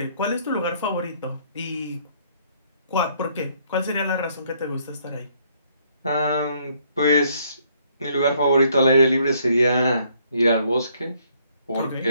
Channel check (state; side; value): inverted; both; correlation -0.67